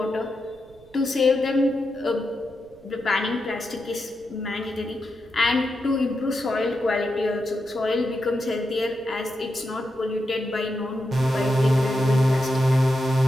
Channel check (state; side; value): noise; right; rumble, 27 dB below the sound